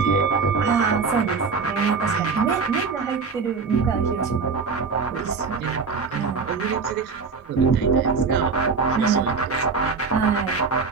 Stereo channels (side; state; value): left; quieter; 4.9 dB